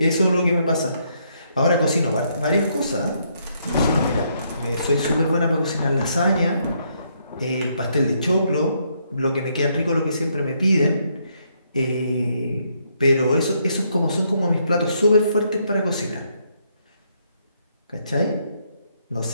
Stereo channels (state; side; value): inverted; both; correlation -0.74